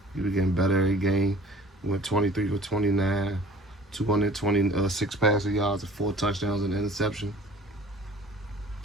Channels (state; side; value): normal; both; correlation 0.48